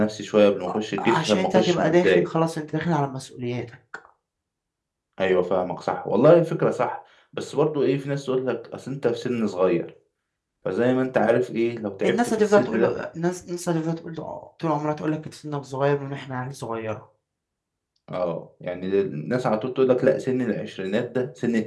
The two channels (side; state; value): both; identical; correlation 1.00